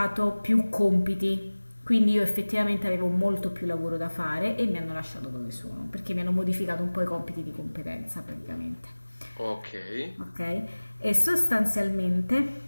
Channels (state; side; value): inverted; both; correlation -1.00